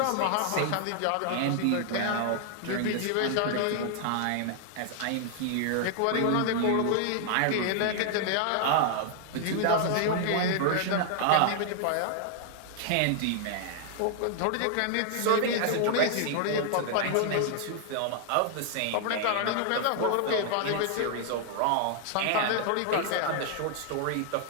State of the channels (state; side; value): different; both; correlation 0.00